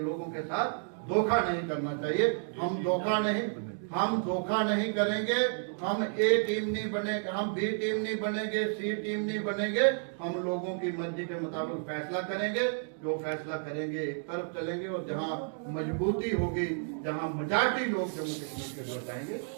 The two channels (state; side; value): silent; left; digital silence